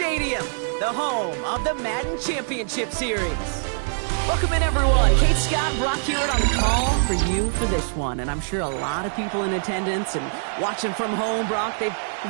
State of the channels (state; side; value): silent; left; 63 dB below the other